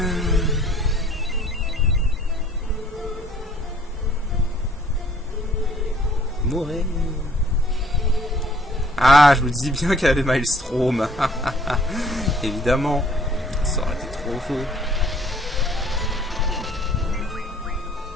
Mourir. Ah, je vous dis bien qu'elle avait Maelstrom. Évidemment. Ça aurait été trop faux.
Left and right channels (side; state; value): both; normal; correlation 0.57